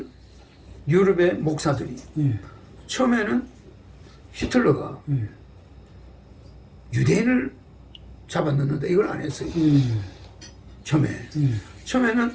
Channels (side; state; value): both; identical; correlation 1.00